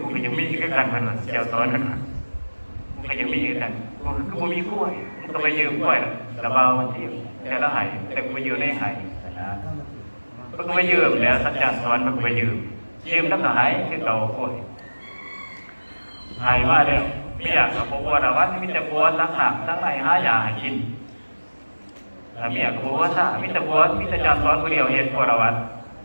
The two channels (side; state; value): both; inverted; correlation -1.00